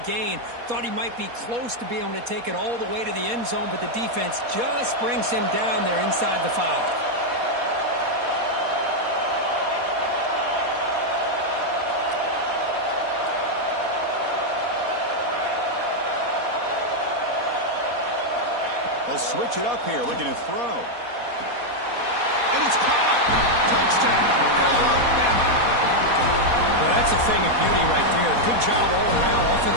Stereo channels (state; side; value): late; left; 4.2 ms